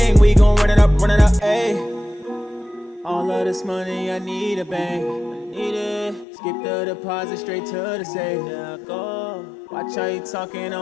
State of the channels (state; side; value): drops out; right; at 6.2 s